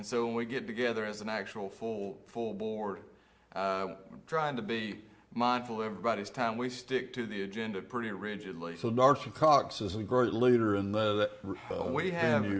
so when we get together as an actual full board, trying to be mindful of everybody's time, we stick to the agenda pretty rigidly. So Dr. Cox is a great leader in that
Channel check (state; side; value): identical; both; correlation 1.00